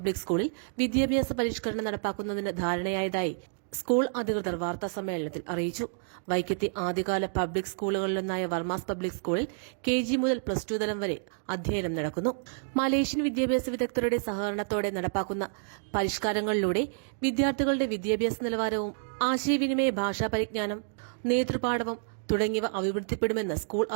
സ്കൂളിൽ വിദ്യാഭ്യാസ പരിഷ്കരണം നടപ്പാക്കുന്നതിന് ധാരണയായതായി സ്കൂൾ അധികൃതർ വാർത്താസമ്മേളനത്തിൽ അറിയിച്ചു. വൈക്കത്തെ ആദ്യകാല പബ്ലിക് സ്കൂളുകളിലൊന്നായ വർമാസ് പബ്ലിക് സ്കൂളിൽ KG മുതൽ +2 തലം വരെ അധ്യയനം നടക്കുന്നു. മലേഷ്യൻ വിദ്യാഭ്യാസ വിദഗ്ധരുടെ സഹകരണത്തോടെ നടപ്പാക്കുന്ന പരിഷ്കാരങ്ങളിലൂടെ വിദ്യാർത്ഥികളുടെ വിദ്യാഭ്യാസ നിലവാരവും ആശയവിനിമയ ഭാഷാ പരിജ്ഞാനം, നേതൃപാടവം തുടങ്ങിയവ അഭിവൃദ്ധിപ്പെടുമെന്ന് സ്കൂൾ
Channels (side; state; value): left; silent; digital silence